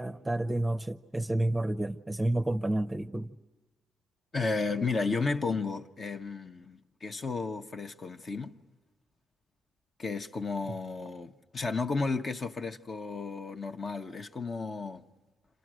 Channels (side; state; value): both; normal; correlation 0.89